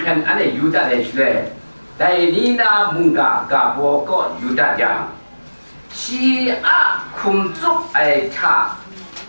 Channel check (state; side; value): inverted; both; correlation -1.00